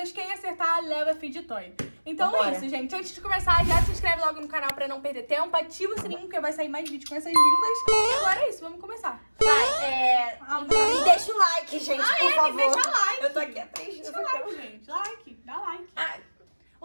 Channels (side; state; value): both; inverted; correlation -1.00